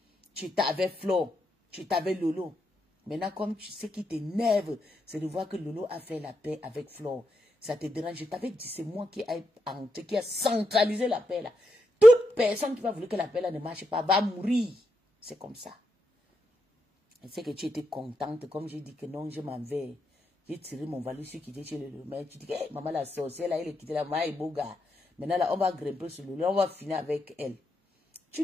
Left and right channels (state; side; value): normal; both; correlation 0.83